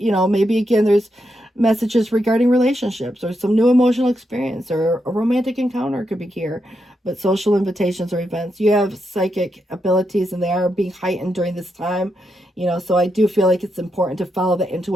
Maybe again, there's messages regarding relationships or some new emotional experience or a romantic encounter could be here. But social invitations or events. You have psychic abilities, and they are being heightened during this time. So I do feel like it's important to follow the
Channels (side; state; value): both; normal; correlation 0.83